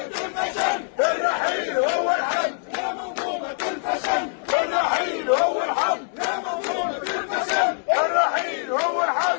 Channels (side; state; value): right; silent; 63 dB below the other